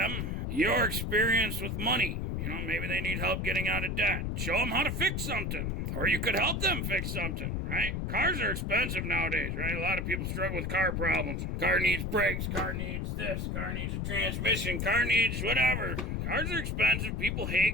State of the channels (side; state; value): left; noise; rumble, 1 dB below the sound